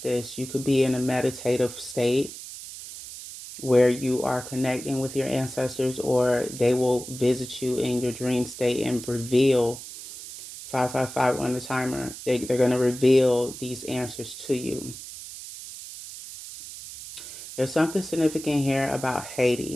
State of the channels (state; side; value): noise; right; hiss, 12 dB below the sound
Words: you could be in a meditative state where you are connecting with your ancestors, or they will visit you in your dream state and reveal 555 on the timer. They're going to reveal these answers to you. There's something significant here about